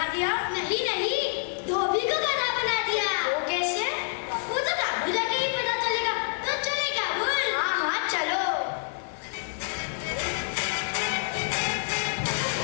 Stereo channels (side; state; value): right; silent; 55 dB below the other